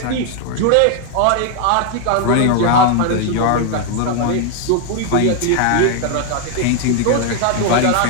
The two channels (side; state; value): both; different; correlation 0.00